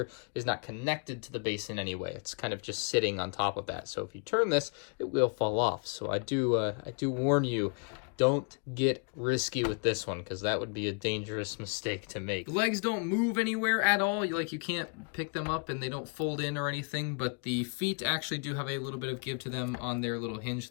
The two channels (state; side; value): quieter; right; 38.4 dB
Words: is not connected to the base in any way. It's kind of just sitting on top of that. So if you turn this, it will fall off. So I do warn you, don't get risky with this one, because that would be a dangerous mistake to make. The legs don't move anywhere at all. You can't pick them up and they don't fold in or anything, but the feet actually do have a little bit of give to them on their little hinge